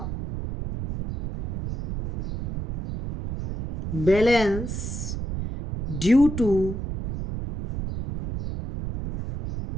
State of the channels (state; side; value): noise; right; rumble, 5 dB below the sound